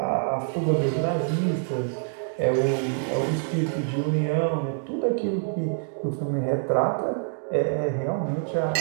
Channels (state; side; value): silent; left; digital silence